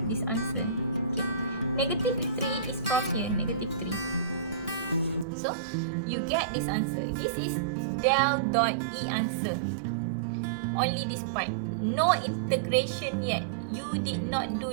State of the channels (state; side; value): drops out; left; at 5.2 s